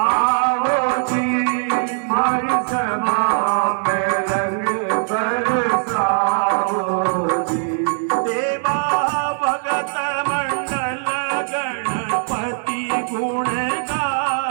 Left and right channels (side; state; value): left; silent; 66 dB below the other